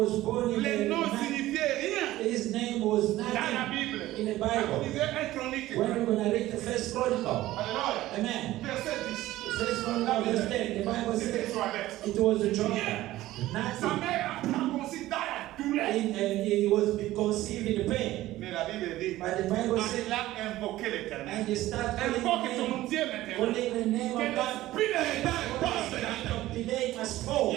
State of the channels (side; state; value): left; quieter; 15.9 dB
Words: born in Les a noms man. signifiaient rien His name was dans la nothing Bible. in the Quand vous Bible. lisez un chronique, When we're going to read the first chronicle, Alléluia. amen. Verset 10. First chronicle, verse 10, the Bible C'était says Joël. it was a Sa child. Nothing. mère a conçu dans la douleur. And he was conceived in pain. Mais la Bible dit, But the Bible says, il a invoqué l'Éternel. and you start Invoque calling ton Dieu maintenant. calling the name Que of God. l'esprit de retard passe maintenant. Delay must Il fall. y